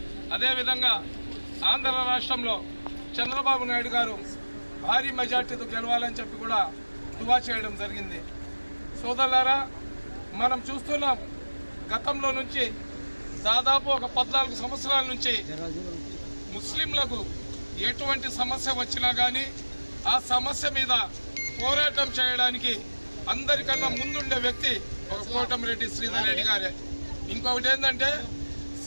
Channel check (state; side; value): inverted; both; correlation -1.00